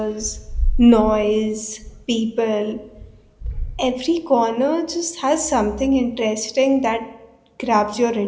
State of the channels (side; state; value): both; identical; correlation 1.00